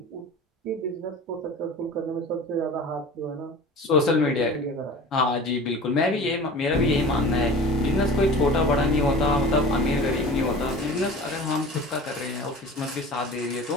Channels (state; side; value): normal; both; correlation 0.39